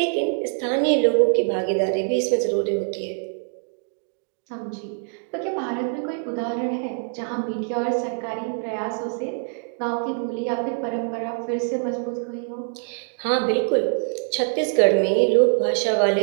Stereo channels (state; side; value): silent; left; 59 dB below the other